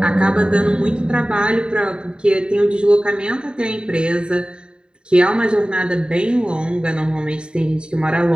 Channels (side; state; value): left; late; 0.050 ms